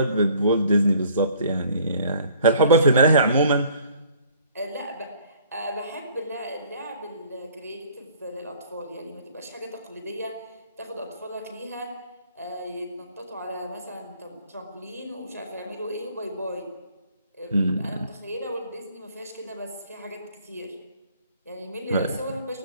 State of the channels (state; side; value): inverted; both; correlation -0.56